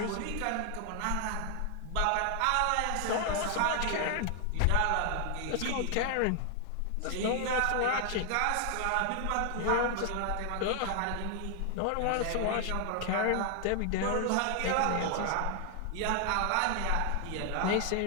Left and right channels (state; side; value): different; both; correlation 0.00